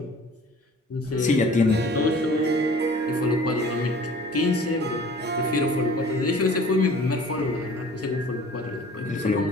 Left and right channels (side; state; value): both; normal; correlation 0.48